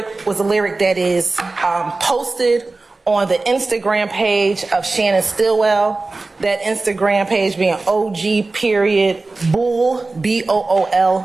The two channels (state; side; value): quieter; left; 3.4 dB